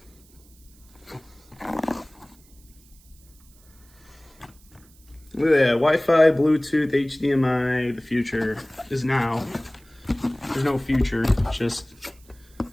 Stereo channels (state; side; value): noise; right; hiss, 28 dB below the sound